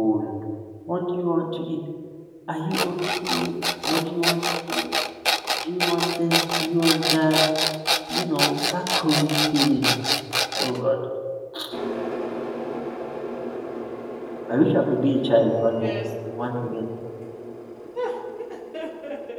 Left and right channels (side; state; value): both; identical; correlation 1.00